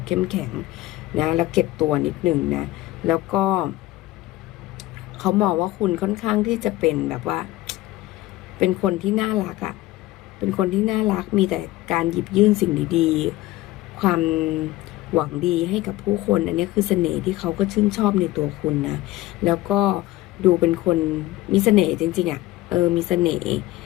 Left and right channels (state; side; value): quieter; right; 17.2 dB